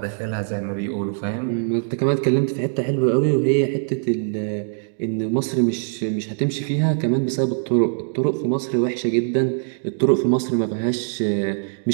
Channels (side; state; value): left; silent; digital silence